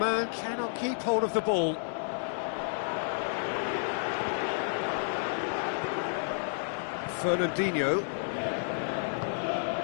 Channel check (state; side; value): silent; right; 56 dB below the other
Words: cannot keep hold of the ball. Fernandinho.